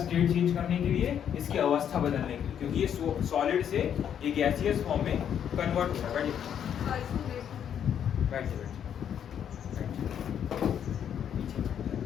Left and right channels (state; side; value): quieter; right; 9.0 dB